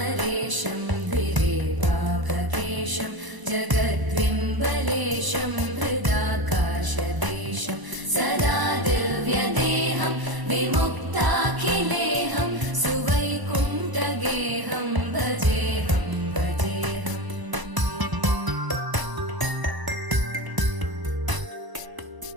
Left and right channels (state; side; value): late; left; 1.0 ms